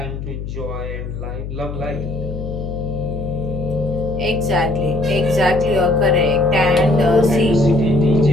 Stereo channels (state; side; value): noise; left; hum, 7 dB below the sound